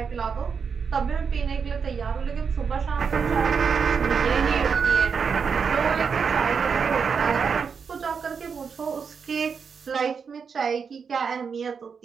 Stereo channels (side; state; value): left; quieter; 6.0 dB